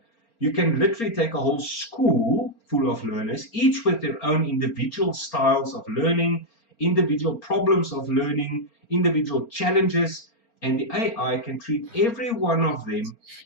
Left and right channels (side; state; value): right; late; 4.3 ms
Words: You can literally take a whole school full of learners, each with their own individual styles of learning, individual problems of learning, individual challenges, and the AI can treat every one of them